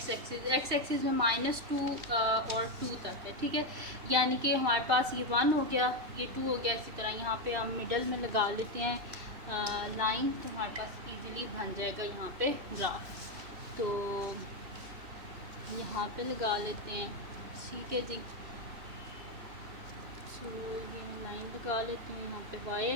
एक्सिस में -2 और 2 तक है। ठीक है, यानी कि हमारे पास ये 1 हो गया, ये 2 हो गया। इसी तरह यहाँ पे हम मिडल में लगा लेते हैं लाइन, तो हमारे पास इजीली बन जाएगा यहाँ पे ग्राफ। तो यहाँ पे लगा लेते हैं। ठीक है जी, सो ये लाइन लगा लेते हैं यहाँ पे वाई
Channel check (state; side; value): late; left; 3.3 ms